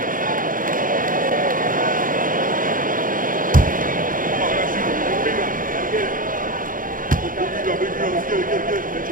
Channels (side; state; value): left; late; 0.40 ms